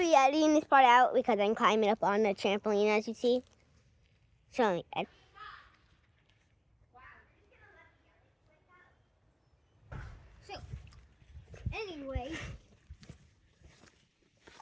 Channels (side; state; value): both; identical; correlation 1.00